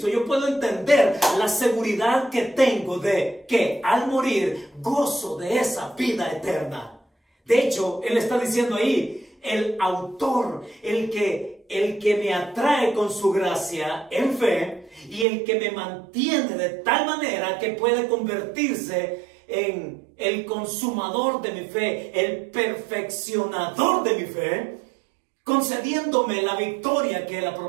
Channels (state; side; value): drops out; left; at 15.2 s